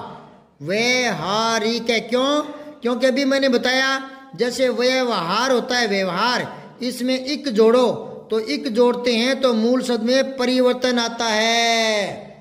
व्यवहारिक है। क्यों? क्योंकि अभी मैंने बताया जैसे व्यवहार होता है, व्यवहार, इसमें इक जोड़ो, तो इक जोड़ते हैं तो मूल शब्द में परिवर्तन आता है।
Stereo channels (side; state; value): both; identical; correlation 1.00